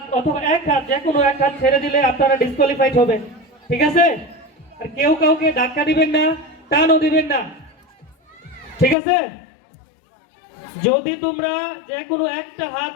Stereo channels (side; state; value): right; drops out; at 9.0 s